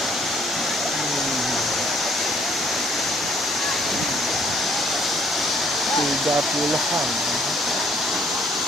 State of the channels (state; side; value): normal; both; correlation 0.64